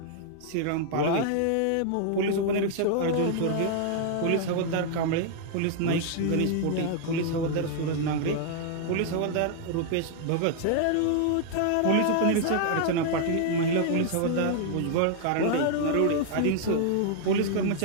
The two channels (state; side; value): different; both; correlation 0.00